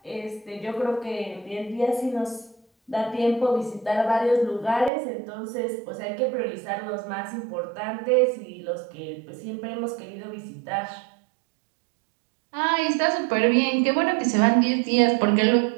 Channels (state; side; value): drops out; left; at 4.9 s